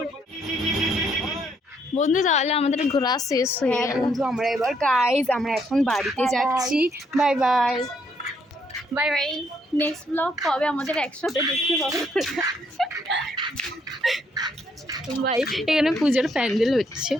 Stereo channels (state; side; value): normal; both; correlation 0.71